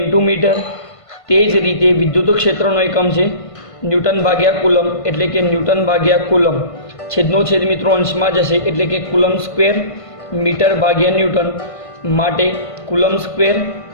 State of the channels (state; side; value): late; right; 1.5 ms